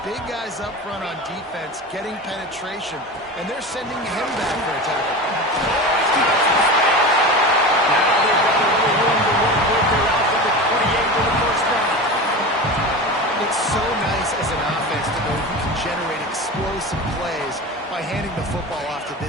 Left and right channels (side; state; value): both; normal; correlation 0.29